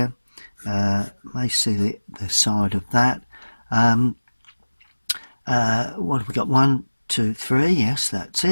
May see the side of that. What have we got? 1, 2, 3. Yes, that's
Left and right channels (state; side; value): inverted; both; correlation -1.00